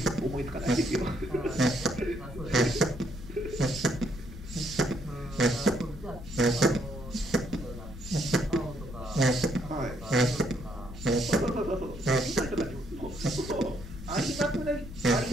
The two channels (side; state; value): left; noise; rumble, 12 dB below the sound